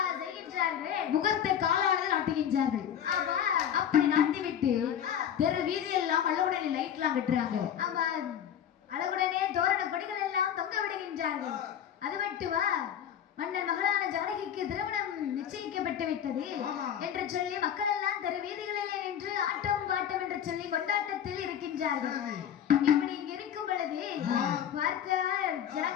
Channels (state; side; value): quieter; right; 9.4 dB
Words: முகத்தை காலானது நாட்டுகின்றார்கள். அப்படி நாட்டிவிட்டு தெரு வீதி எல்லாம் அழகுடனே லைட் எல்லாம் கட்டுறாங்க. அழகுடனே தோரண கொடிகள் எல்லாம் தொங்க விடுகின்றார்கள். அது மட்டுமா, மன்னன் மகளான ஜானகிக்கு திருமணம் நிச்சயிக்கப்பட்டு விட்டது என்று சொல்லி மக்கள் எல்லாம் தெரு வீதிகளிலே நின்று ஆட்டம் பாட்டம் என்று சொல்லி கொண்டாட்டத்தில் இருக்கின்றார்கள். இப்படி இங்க இருக்கும் பொழுது பார்த்தால்